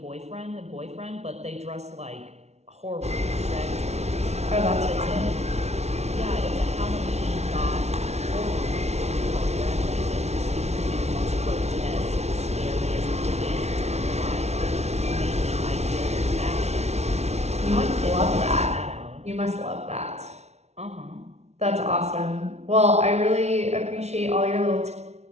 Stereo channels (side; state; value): left; late; 0.31 ms